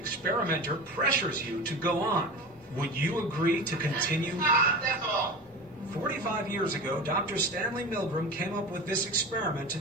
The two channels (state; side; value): normal; both; correlation 0.30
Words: pressures you to go on. Would you agree to continue? That's all. 45 years ago, Dr. Stanley Milgram came up with this experiment to